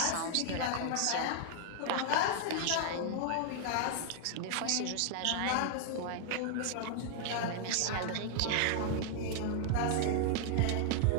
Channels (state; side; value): different; both; correlation 0.00